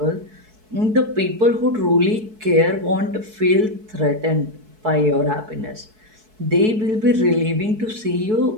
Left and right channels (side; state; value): left; late; 4.6 ms